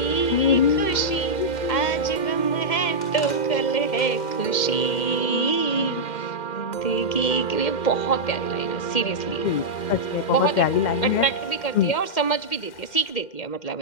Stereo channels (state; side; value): late; right; 2.1 ms